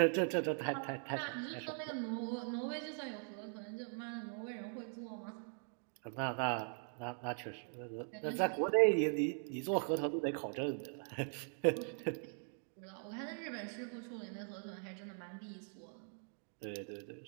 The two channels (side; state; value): left; silent; 50 dB below the other